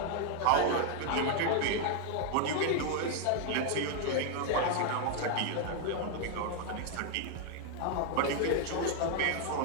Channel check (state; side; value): different; both; correlation 0.00